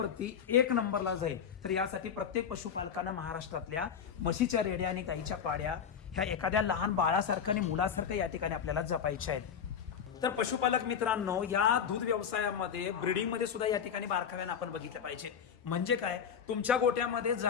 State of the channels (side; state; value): right; quieter; 7.6 dB